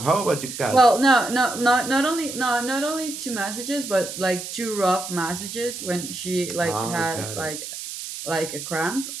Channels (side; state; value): right; noise; hiss, 8 dB below the sound